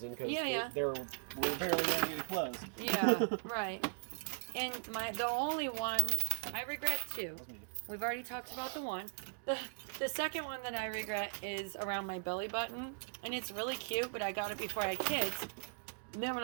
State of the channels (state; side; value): silent; left; digital silence